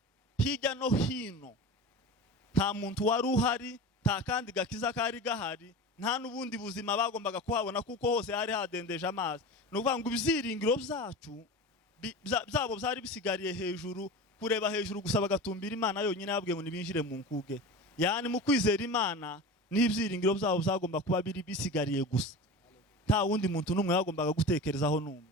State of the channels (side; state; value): both; normal; correlation 0.31